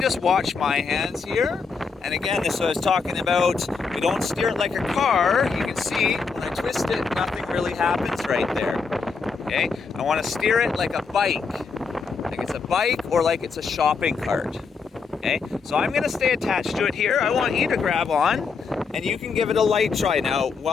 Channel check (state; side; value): quieter; right; 5.0 dB